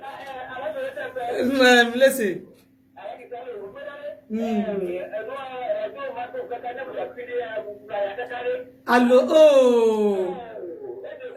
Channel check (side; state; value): both; identical; correlation 1.00